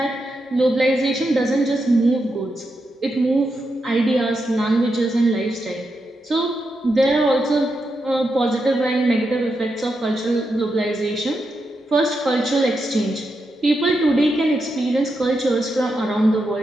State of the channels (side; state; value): both; normal; correlation 0.85